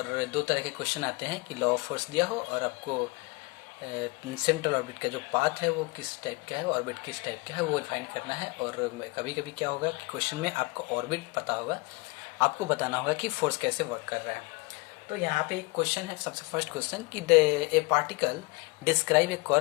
दो तरह के क्वेश्चन आते हैं कि लॉ ऑफ फोर्स दिया हो और आपको सेंट्रल ऑर्बिट का जो पाथ है वो किस टाइप का है, ऑर्बिट किस टाइप का है वो फाइंड करना है। और कभी कभी क्या होगा कि क्वेश्चन में आपको ऑर्बिट पता होगा, आपको बताना होगा कि फोर्स कैसे वर्क कर रहा है। तो यहाँ पे एक क्वेश्चन है, सबसे फर्स्ट क्वेश्चन कि a particle describe a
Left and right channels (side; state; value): right; quieter; 25.7 dB